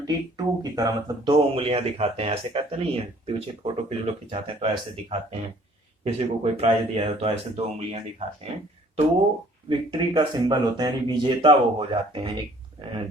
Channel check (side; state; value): both; normal; correlation 0.56